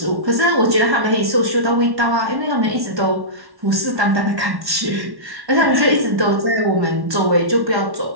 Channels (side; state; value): left; late; 1.1 ms